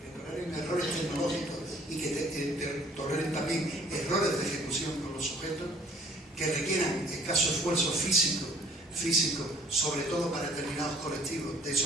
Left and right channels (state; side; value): normal; both; correlation 0.56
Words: que toleren errores tecnológicos y que toleren también errores de ejecución con los sujetos, que requieran escaso esfuerzo físico, sobre todo para determinados colectivos de